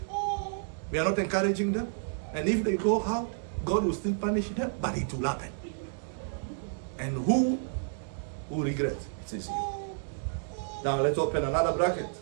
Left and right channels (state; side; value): silent; left; digital silence